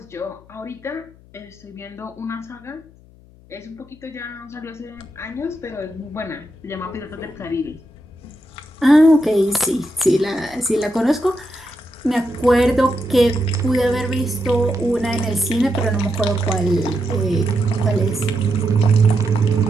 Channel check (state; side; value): noise; left; hum, 25 dB below the sound